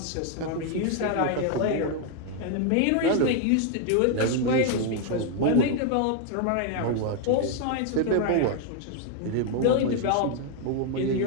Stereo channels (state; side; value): different; both; correlation 0.00